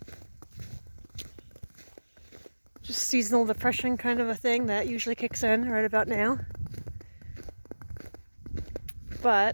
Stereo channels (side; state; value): both; inverted; correlation -1.00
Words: Just seasonal depression kind of a thing that usually kicks in right about now.